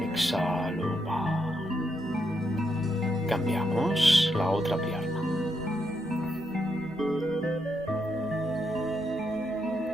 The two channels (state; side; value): normal; both; correlation 0.80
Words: Exhalo, bajo. Cambiamos la otra pierna.